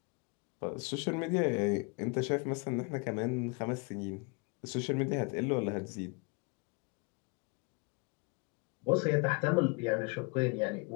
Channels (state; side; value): quieter; right; 31.2 dB